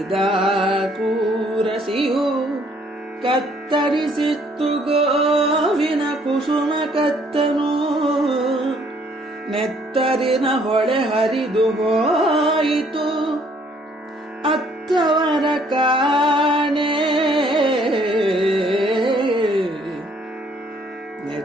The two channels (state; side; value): normal; both; correlation 0.63